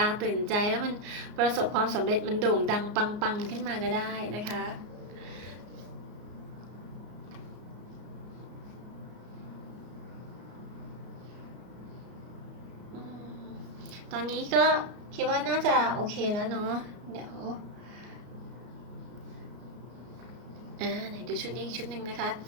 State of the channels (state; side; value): late; left; 33 ms